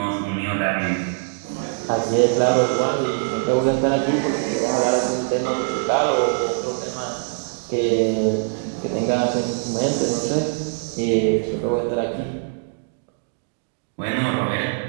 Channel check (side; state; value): left; silent; 64 dB below the other